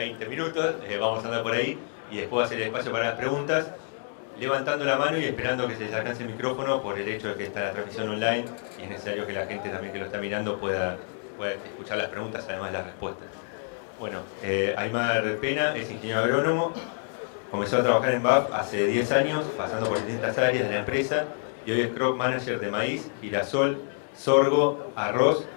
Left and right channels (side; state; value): right; silent; 60 dB below the other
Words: minutos, vamos a andar por ahí y después va a hacer el espacio para las preguntas, levantando la mano y esperando que se les alcance el micrófono por el hecho de que está la transmisión online y es necesario que la gente también que lo está mirando pueda escuchar las preguntas, además de las respuestas. Bueno, Aymar Pena es ingeniero agrónomo, comenzó a trabajar en BAF hace 10 años, pasando por distintas áreas de la empresa, y hoy es crop manager de maíz, girasol, sorgo, arroz